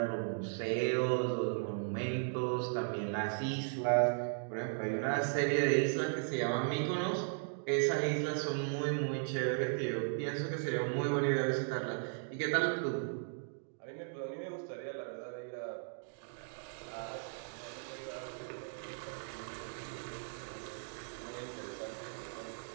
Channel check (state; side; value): silent; left; digital silence